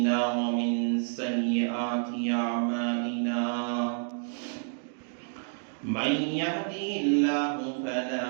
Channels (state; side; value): silent; left; 58 dB below the other